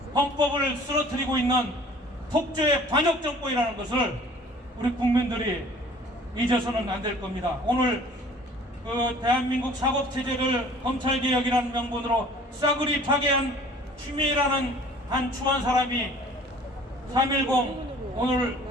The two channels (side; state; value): both; normal; correlation 0.50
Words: 헌법을 쓰러뜨리고 있는 폭주의 반역정권이라는 것을 우리 국민들이 잊어서는 안 될 겁니다. 오늘 그 대한민국 사법체제를 검찰개혁이라는 명분으로 싸그리 파괴한 추미애라는 한 추한 사람이 3.10 오늘